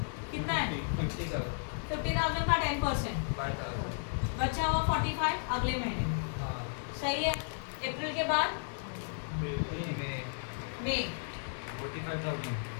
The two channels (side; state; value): right; silent; digital silence